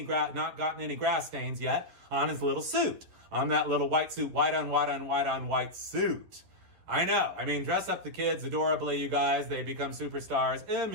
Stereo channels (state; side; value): late; left; 11 ms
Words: grass stains yet on his little suit, on that little white suit, white on white on white on white suit. I know. I mean, dress up the kids adorably, you guys. They become superstars